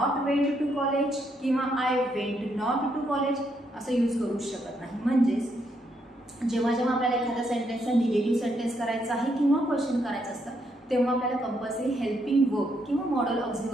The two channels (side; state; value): both; normal; correlation 0.76